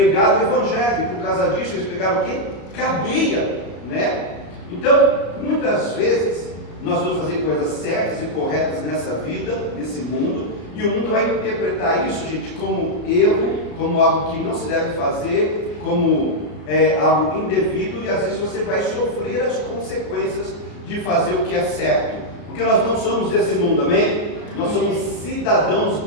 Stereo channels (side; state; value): right; late; 33 ms